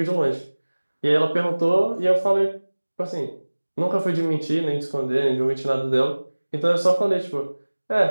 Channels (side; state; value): both; inverted; correlation -1.00